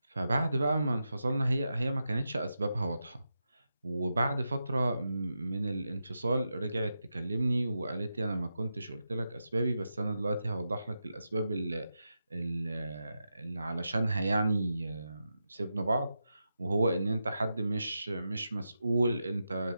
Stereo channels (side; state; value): both; inverted; correlation -0.88